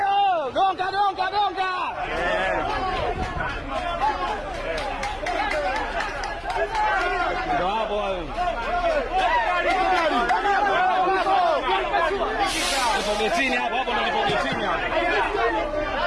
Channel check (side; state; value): both; identical; correlation 1.00